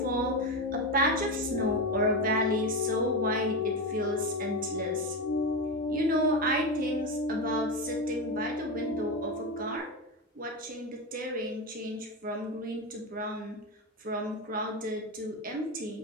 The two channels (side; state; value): both; normal; correlation 0.15